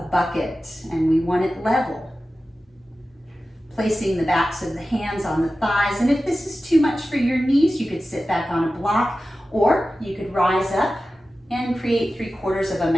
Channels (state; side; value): normal; both; correlation 0.94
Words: bucket, and we want it level. Placing the backs of the hands on the thighs, and if this is too much for your knees, you could sit back on a block, or you could rise up and create 3/4 of a